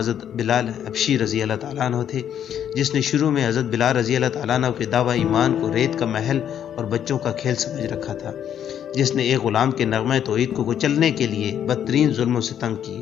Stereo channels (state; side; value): quieter; right; 9.5 dB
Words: بلال حبشی رضی اللہ تعالیٰ عنہ تھے، جس نے شروع میں حضرت بلال رضی اللہ تعالیٰ عنہ کے دعویٰ ایمان کو ریت کا محل اور بچوں کا کھیل سمجھ رکھا تھا، جس نے ایک غلام کے نغمہ توحید کو کچلنے کے لیے بدترین ظلم و ستم